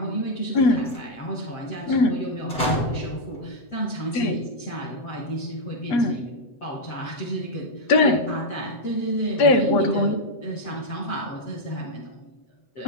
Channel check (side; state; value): right; late; 7.9 ms